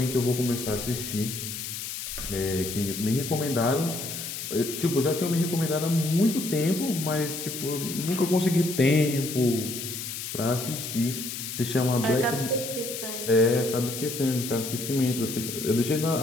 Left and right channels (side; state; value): left; noise; hiss, 7 dB below the sound